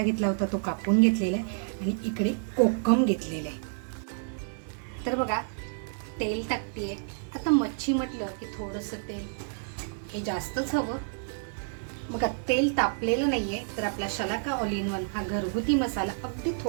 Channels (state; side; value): silent; left; digital silence